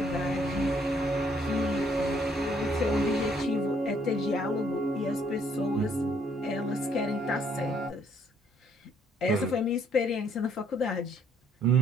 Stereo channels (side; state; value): both; normal; correlation 0.66